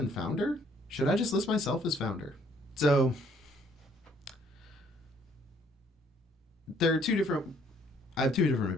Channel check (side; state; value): both; normal; correlation 0.64